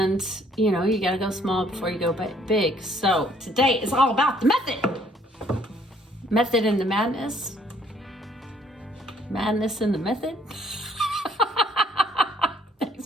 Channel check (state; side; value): normal; both; correlation 0.63